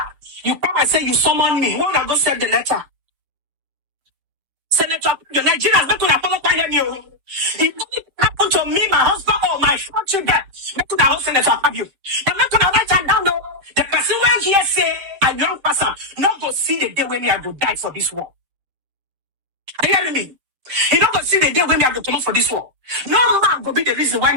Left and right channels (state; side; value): late; left; 7.7 ms